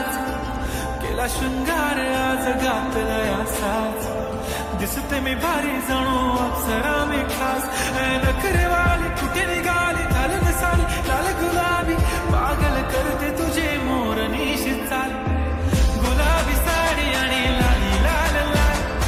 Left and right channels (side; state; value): both; identical; correlation 1.00